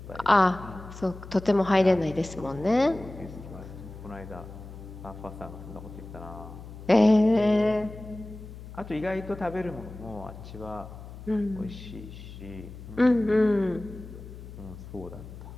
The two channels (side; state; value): left; noise; hum, 14 dB below the sound